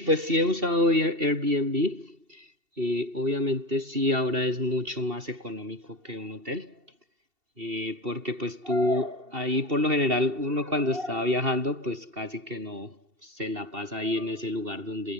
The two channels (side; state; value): left; late; 2.7 ms